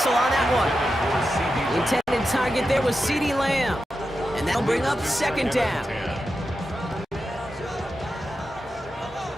on that one. The intended target there was CeeDee Lamb. And that'll bring up second down.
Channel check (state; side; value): normal; both; correlation 0.90